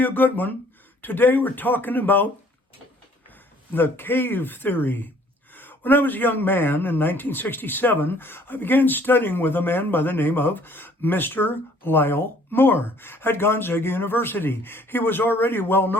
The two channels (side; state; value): both; normal; correlation 0.58